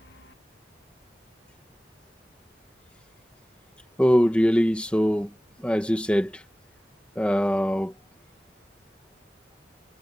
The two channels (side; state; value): both; normal; correlation 0.98